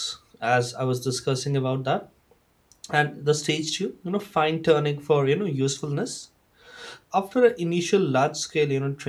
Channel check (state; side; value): identical; both; correlation 1.00